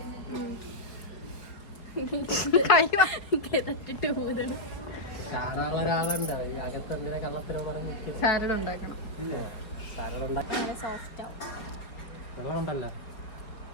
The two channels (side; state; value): right; late; 5.0 ms